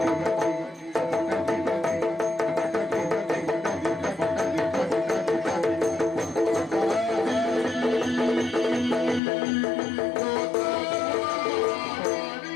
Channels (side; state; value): right; drops out; at 9.2 s